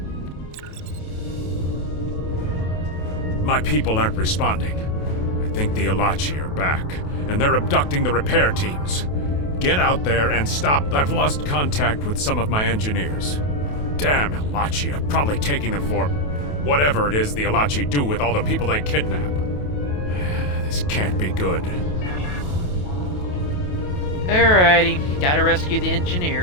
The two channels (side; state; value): right; late; 28 ms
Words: My people aren't responding. I think the Alachi are back, and they're abducting the repair teams. Get out there and stop. I've lost contact with some of my engineers. Damn Alachi are probably taking them for whatever it is the Alachi do with all the people they kidnap. This can't be good. Alrighty, gotta rescue the